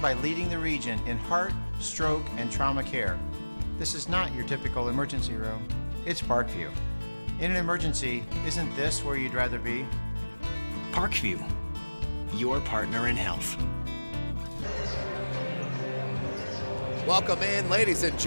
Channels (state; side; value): inverted; both; correlation -1.00